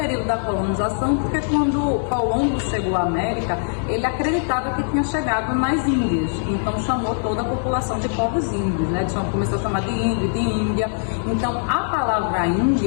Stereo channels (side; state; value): right; silent; 64 dB below the other